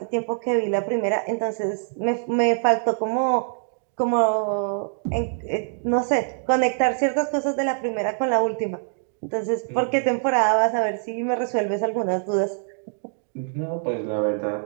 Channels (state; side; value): silent; left; digital silence